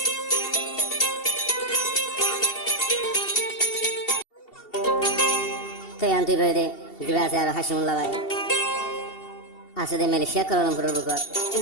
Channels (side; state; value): right; late; 2.7 ms